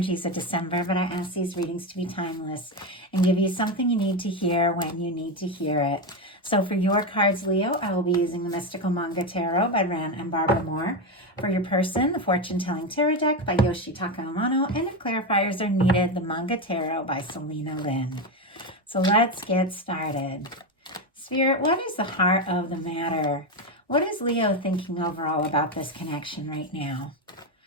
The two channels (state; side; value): normal; both; correlation 0.12